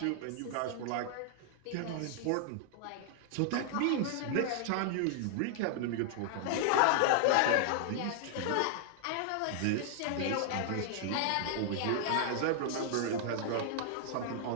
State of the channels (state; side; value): different; both; correlation -0.01